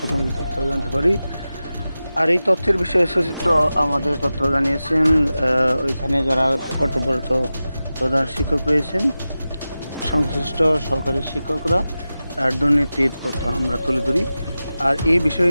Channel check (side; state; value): both; inverted; correlation -0.94